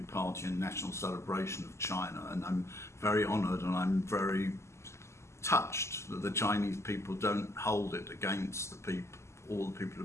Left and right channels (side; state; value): right; late; 0.13 ms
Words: party and national celebration of China. And I'm very honoured and I'm very touched that the Chinese people don't hold it against all the people